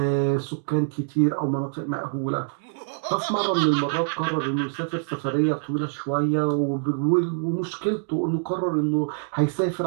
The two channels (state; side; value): silent; left; digital silence